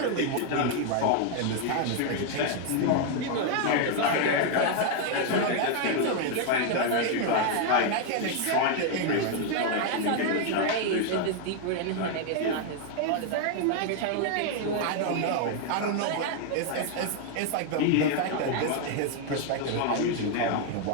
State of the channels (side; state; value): both; different; correlation 0.00